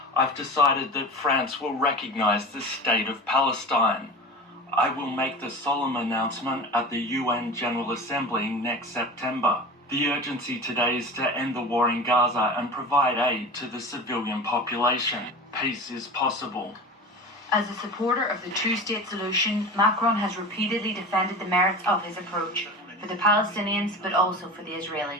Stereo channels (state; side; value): normal; both; correlation 0.32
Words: I've decided that France will recognize the state of Palestine. I will make the solemn announcement at the UN General Assembly next September. The urgency today is to end the war in Gaza and provide aid to the civilian population. Peace is possible. As a supporter of the two-state solution, Macron has repeatedly defended the merits of his approach for the Palestinians but also for the